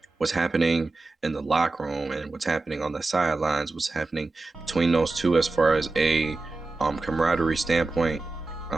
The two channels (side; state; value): left; quieter; 3.4 dB